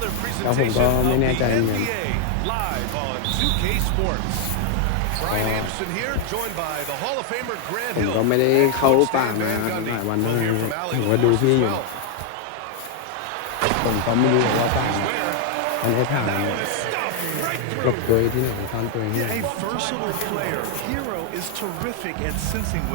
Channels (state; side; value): different; both; correlation 0.00